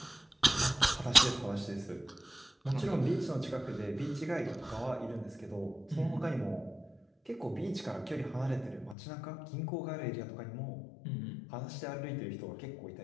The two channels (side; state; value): right; drops out; at 9.0 s